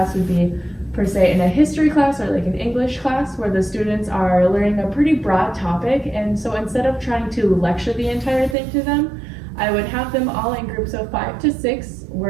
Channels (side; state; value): left; drops out; at 8.6 s